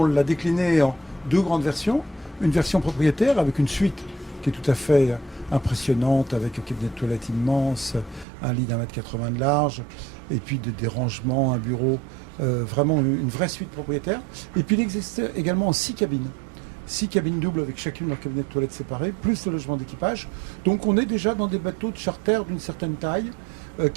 l'a décliné en 2 grandes versions. Une version propriétaire avec une suite qui est tout à fait impressionnante, avec un cabinet de toilette immense, un lit d'1,80 m de large, et puis des rangements, un bureau, vraiment une vraie suite propriétaire. Et puis il existe également 6 cabines. 6 cabines doubles avec chacune leur cabinet de toilette séparé, plus le logement d'équipage. Donc on est déjà dans des bateaux de charter d'une certaine taille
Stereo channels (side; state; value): left; drops out; at 8.2 s